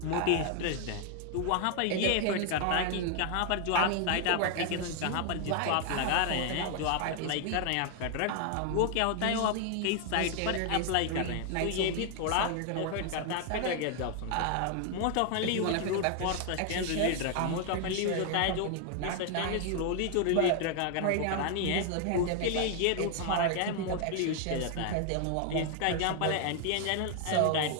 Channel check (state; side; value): different; both; correlation 0.00